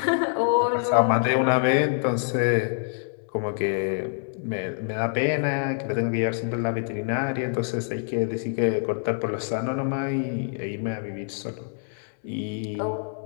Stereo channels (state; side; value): silent; right; digital silence